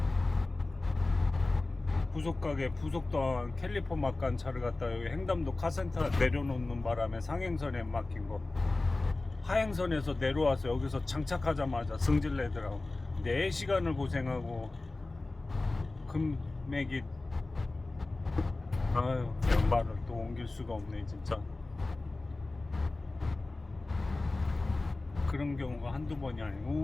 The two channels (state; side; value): quieter; right; 3.2 dB